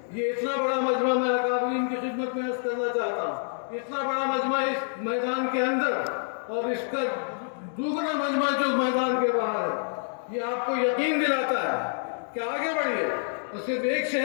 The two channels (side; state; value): right; silent; digital silence